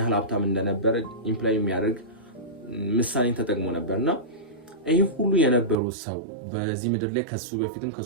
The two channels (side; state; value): left; drops out; at 5.8 s